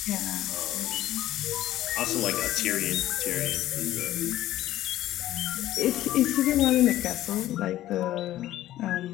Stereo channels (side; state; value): right; quieter; 14.1 dB